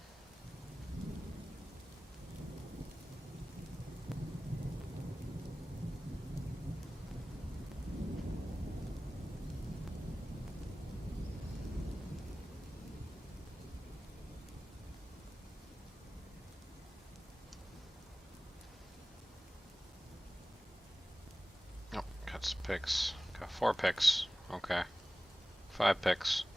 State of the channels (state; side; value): normal; both; correlation 0.97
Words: Oh, got some picks. Got 4 picks. Okay. 5 picks.